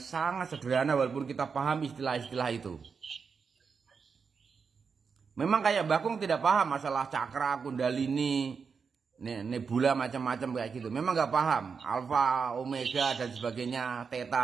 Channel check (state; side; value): quieter; left; 5.7 dB